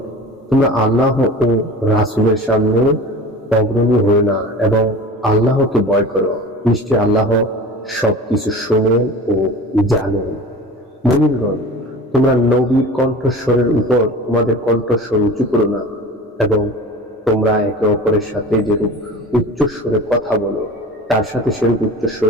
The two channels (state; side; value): normal; both; correlation 0.37